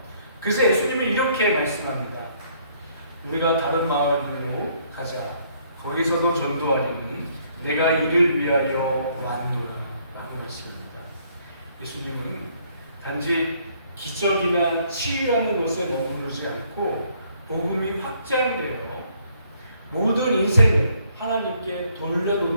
그래서 예수님이 이렇게 말씀합니다. 우리가 다른 마을로 가자. 거기서도 전도하리니 내가 이를 위하여 왔노라 라고 말씀합니다. 예수님은 단지 기적이나 치유하는 것에 머무르지 않고 복음이 확장되어 모든 인생을 하나님께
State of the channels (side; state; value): both; inverted; correlation -0.66